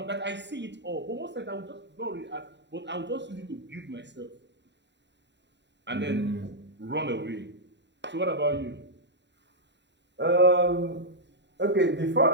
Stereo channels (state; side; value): late; left; 0.52 ms